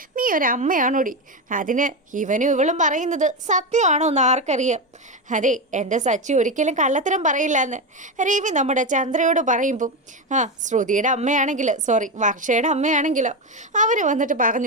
നീ ഒരമ്മയാണോടി? അതിന് ഇവനും ഇവളും പറയുന്നത് സത്യമാണോ എന്ന് ആർക്കറിയാം? അതെ, എൻ്റെ സച്ചി ഒരിക്കലും കള്ളത്തരം പറയില്ല എന്ന് രവി നമ്മുടെ ചന്ദ്രയോട് പറയുമ്പം ശ്രുതിയുടെ അമ്മയാണെങ്കിലോ, വർഷയുടെ അമ്മയാണെങ്കിലോ അവർ വന്നിട്ട്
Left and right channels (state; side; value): normal; both; correlation 0.14